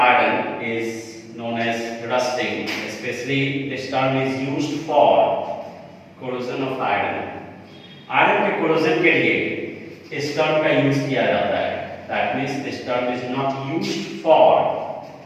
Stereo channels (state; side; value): identical; both; correlation 1.00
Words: iron is known as rusting. Especially this term is used for corrosion of iron. Iron के corrosion के लिए इस term का यूज किया जाता है. That means this term is not used for